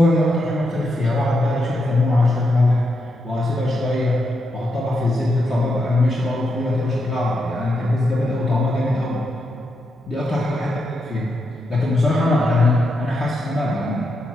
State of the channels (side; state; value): both; normal; correlation 0.83